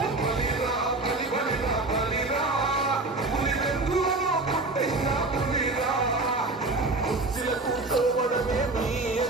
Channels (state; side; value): quieter; left; 3.2 dB